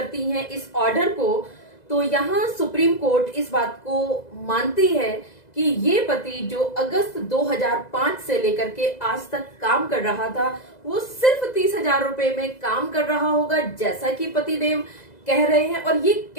हैं इस ऑर्डर को, तो यहाँ सुप्रीम कोर्ट इस बात को मानती है कि ये पति जो अगस्त 2005 से लेकर के आज तक काम कर रहा था वो सिर्फ 30,000 रुपए में काम कर रहा होगा, जैसा कि पतिदेव कह रहे हैं। और ये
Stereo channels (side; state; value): right; late; 2.0 ms